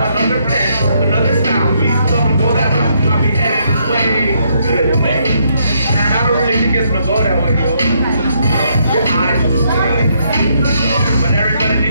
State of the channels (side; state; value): both; inverted; correlation -0.73